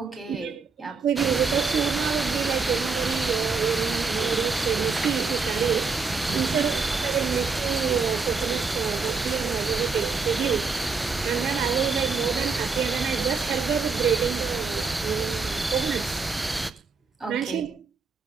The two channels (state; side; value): quieter; left; 4.7 dB